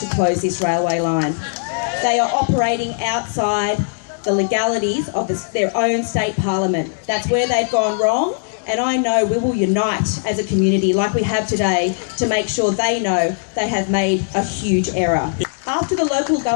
close this railway line. They are operating outside the legalities of their own state parliament. That's where they've gone wrong, and I know we will unite as a community like we have today to make sure they know they have made a huge error. After the local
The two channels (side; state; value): right; silent; digital silence